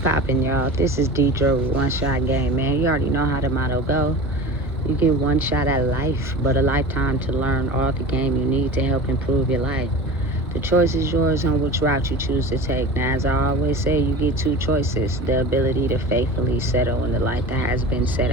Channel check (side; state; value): both; normal; correlation 0.34